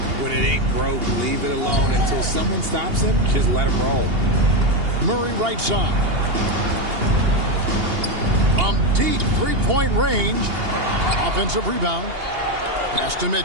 When it ain't broke, leave it alone until someone stops him. Just let him roll. Murray right side. From deep three-point range. Offensive rebound. Pass to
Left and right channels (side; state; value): left; late; 2.8 ms